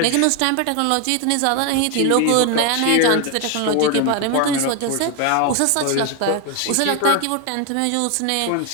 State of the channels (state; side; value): different; both; correlation 0.01